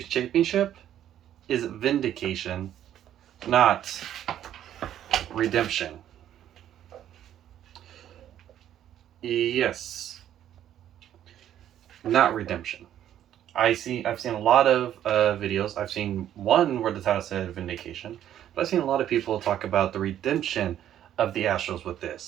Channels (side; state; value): left; quieter; 11.1 dB